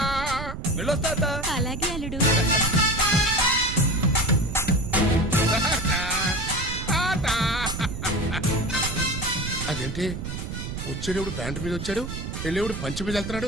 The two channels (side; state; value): right; noise; rumble, 7 dB below the sound